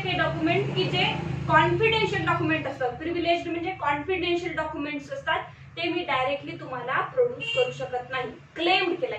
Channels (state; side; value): identical; both; correlation 1.00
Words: डॉक्युमेंट की जे कॉन्फिडेन्शियल डॉक्युमेंट असतात, प्रिव्हिलेज्ड म्हणजे कॉन्फिडेन्शियल डॉक्युमेंट्स असतात, ते मी डायरेक्टली तुम्हाला प्रोड्यूस करू शकत नाही. क्लेम केला,